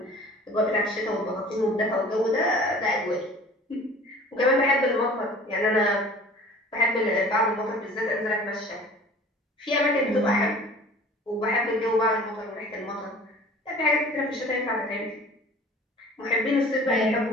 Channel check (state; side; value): normal; both; correlation 0.45